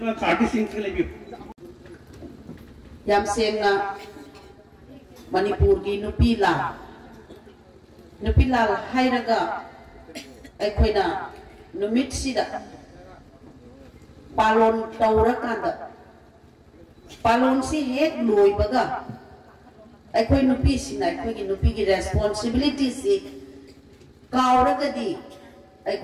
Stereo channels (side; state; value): both; identical; correlation 1.00